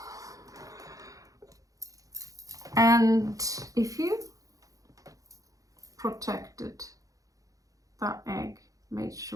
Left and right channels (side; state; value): left; late; 0.17 ms